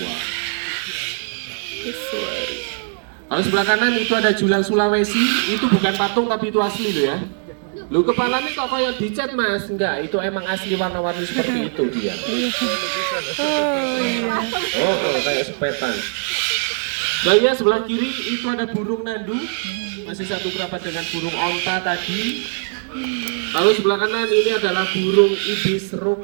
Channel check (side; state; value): left; silent; digital silence